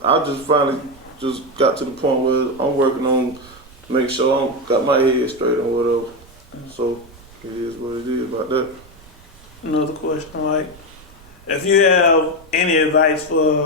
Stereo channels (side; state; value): right; noise; rumble, 24 dB below the sound